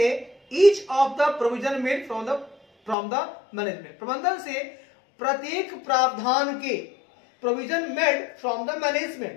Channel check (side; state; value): right; drops out; at 3.0 s